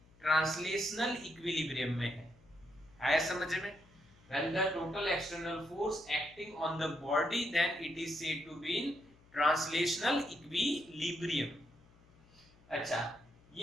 ट्रांसलेशनल इक्विलिब्रियम में है। आया समझ में? When the total external force acting on the body, then it is said to be in translational equilibrium. अच्छा,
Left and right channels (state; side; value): noise; left; hum, 27 dB below the sound